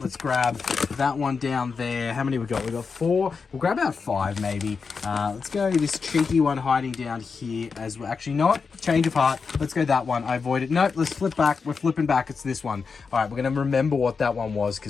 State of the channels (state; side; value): quieter; right; 5.2 dB